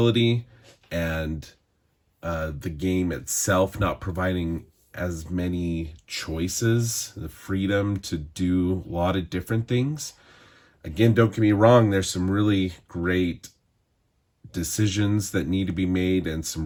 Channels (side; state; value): both; identical; correlation 1.00